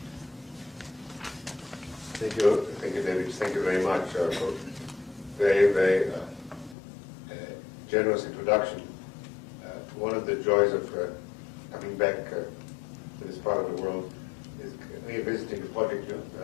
Thank you, David. Thank you very much for very, very generous introduction. One of the joys of coming back to this part of the world is revisiting the project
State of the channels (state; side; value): drops out; right; at 6.8 s